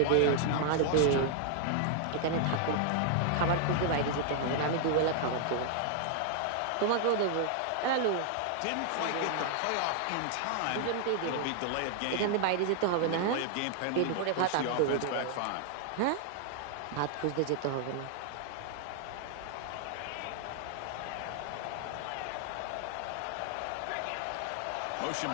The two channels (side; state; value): both; different; correlation 0.00